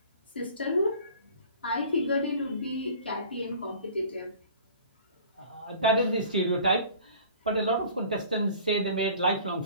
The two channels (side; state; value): both; inverted; correlation -0.46